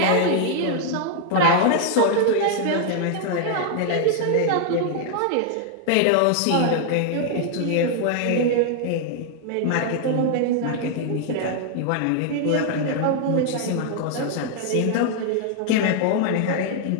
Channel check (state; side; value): different; both; correlation 0.00